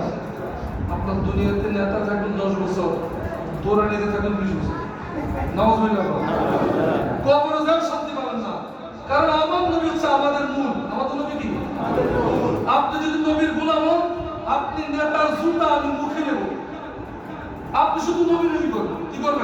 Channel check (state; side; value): identical; both; correlation 1.00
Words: আপনার দুনিয়াতে নেতা থাকবেন 10 বছর, দৌড়ানি নিতে থাকবেন 20 বছর। নাউযুবিল্লাহ। কবরে যান শান্তি পাবেন না। কারণ আমার নবী হচ্ছে আমাদের মূল। আমাদের নবী কি? আপনি যদি নবীর গোলাম হন, আপনি নেতার জুতা আমি মুখে নেব। আপনি শুধু নবী নবী করবেন। কি